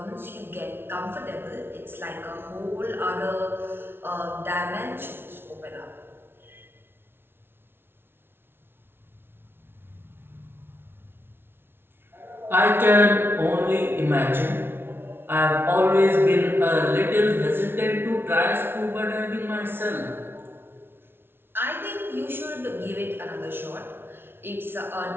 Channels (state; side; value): late; left; 0.11 ms